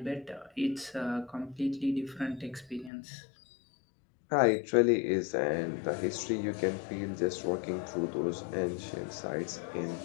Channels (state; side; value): drops out; right; at 2.9 s